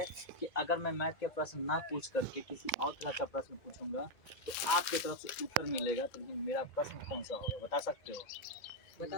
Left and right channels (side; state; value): right; late; 2.0 ms